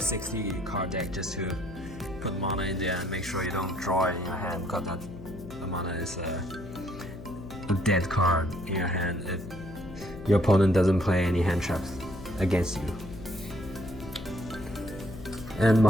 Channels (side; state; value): left; noise; hum, 13 dB below the sound